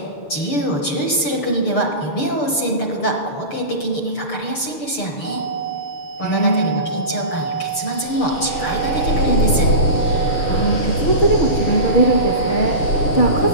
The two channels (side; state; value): right; late; 6.8 ms